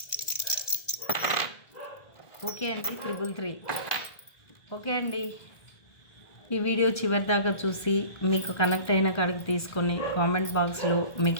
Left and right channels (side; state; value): right; late; 1.5 ms